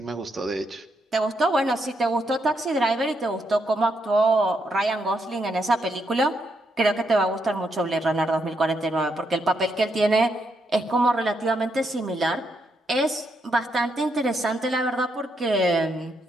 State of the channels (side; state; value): both; normal; correlation 0.79